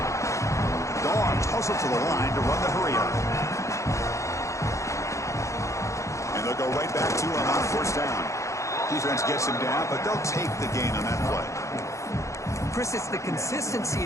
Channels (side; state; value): right; late; 0.15 ms